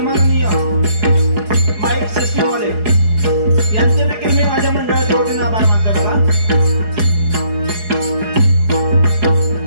माईक सिस्टीमवाले यांचे देखील मी माझ्या मंडळाच्या वतीने आभार मानतो. बघा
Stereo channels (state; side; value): late; left; 4.8 ms